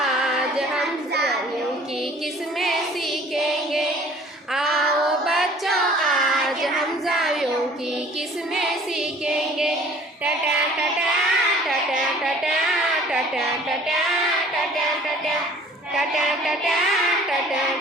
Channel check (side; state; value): both; normal; correlation 0.51